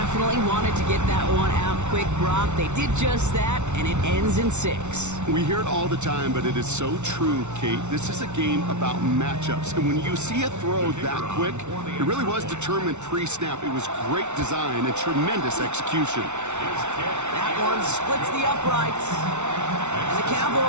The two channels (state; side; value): late; left; 0.83 ms